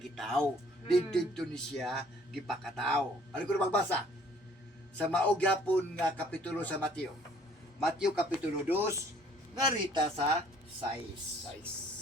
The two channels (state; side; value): normal; both; correlation 0.58